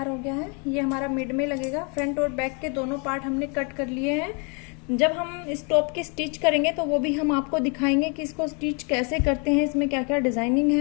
हो गया है। ये हमारा मिड में लगेगा। फ्रंट और बैक के दोनों पार्ट हमने कट कर लिए हैं। जब हम इस टॉप की स्टिच करेंगे तो वो भी हम आपको दिखाएंगे कि इसको स्टिच कैसे करते हैं, इसमें क्या क्या डिजाइनिंग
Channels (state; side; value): quieter; right; 34.9 dB